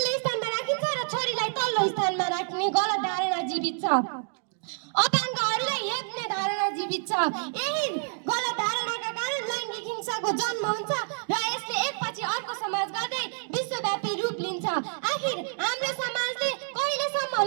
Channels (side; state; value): left; silent; 59 dB below the other